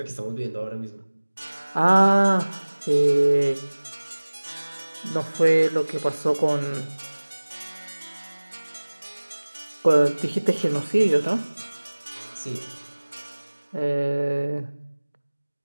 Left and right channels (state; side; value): inverted; both; correlation -1.00